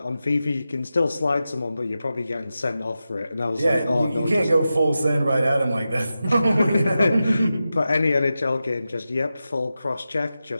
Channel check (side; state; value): both; inverted; correlation -0.92